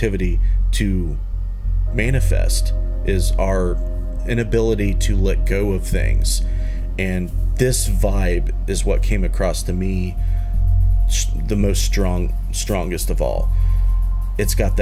to manifest, is our inability to let go of things. And this vibe is what came across to me the most strongest of all. It's got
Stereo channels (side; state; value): both; identical; correlation 1.00